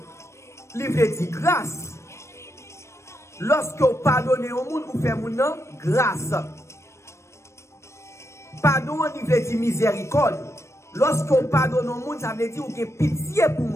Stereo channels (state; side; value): late; right; 0.13 ms